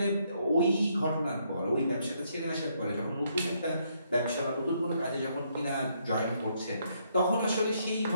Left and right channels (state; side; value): inverted; both; correlation -0.73